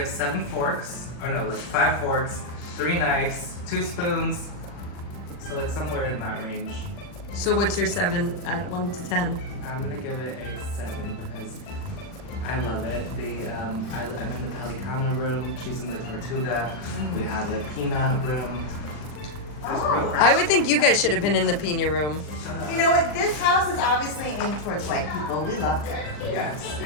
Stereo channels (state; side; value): late; right; 40 ms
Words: 7 forks, or no, like 5 forks, 3 knives, 2 spoons. So like somewhere in that range. So what's your 7 at 1 to 10? I'm gonna give it a 7 because I love it. I'm in the Pelicano room. She's in the Tortuga. We have a peanut room. I would think you guys should have been in the Pina room. You know what? This house is obviously aimed towards white people. We loved it. Yes,